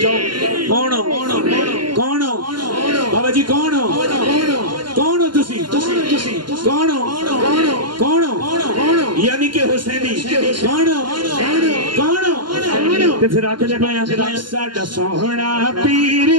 جاؤ۔ کون ہو؟ کون ہو بابا جی؟ کون ہو؟ کون ہو تسی؟ کون ہو؟ کون ہو؟ یعنی کہ حسینی۔ کون ہو؟ کون ہو؟ تے پھر آکے جب آیا ساڈا سوہنا پیر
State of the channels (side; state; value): left; late; 0.72 ms